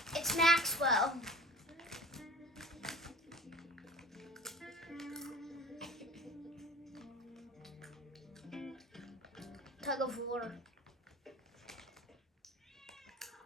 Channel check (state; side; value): normal; both; correlation 0.41